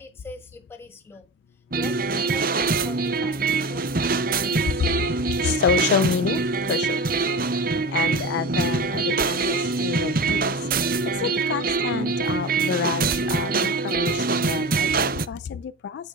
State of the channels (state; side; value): normal; both; correlation 0.29